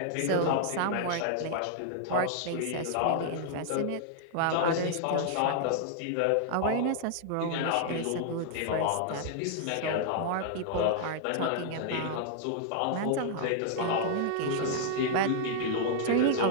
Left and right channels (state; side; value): different; both; correlation -0.01